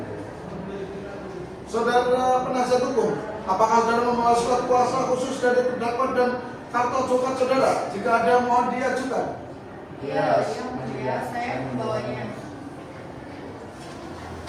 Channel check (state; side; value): identical; both; correlation 1.00